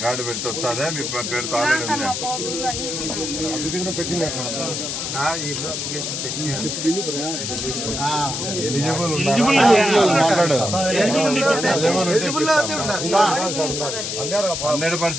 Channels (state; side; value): noise; left; hiss, 3 dB below the sound